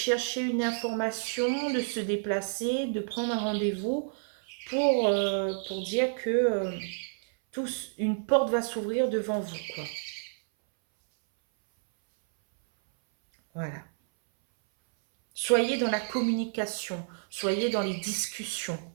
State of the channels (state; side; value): silent; left; 58 dB below the other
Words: une information, de se déplacer, de prendre un rendez-vous pour dire que une porte va s'ouvrir devant vous, quoi. Voilà. Soyez dans la communication, soyez dans les discussions.